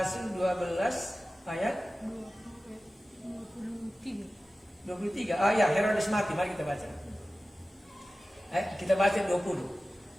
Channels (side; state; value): both; normal; correlation 0.96